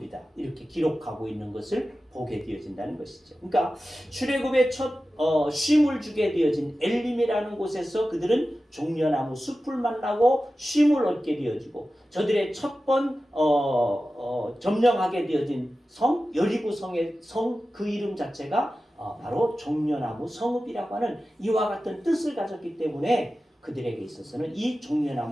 이렇게 기록하고 있는 것을 보게 되어진다는 것이죠. 그러니까 출애굽의 첫 쉼을 주게 되어진 엘림이라는 곳에서 그들은 종려나무 숲을 만나고 쉼을 얻게 되어지고 저들의 첫 번 점령하게 되어진 성 여리고 성의 성 그 이름 자체가 바로 종려나무 성읍이라고 하는 이와 같은 뜻을 가졌기 때문에 그들에게 있어서는 이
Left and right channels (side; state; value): both; normal; correlation 0.94